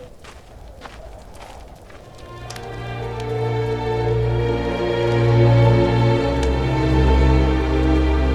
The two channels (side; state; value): both; identical; correlation 1.00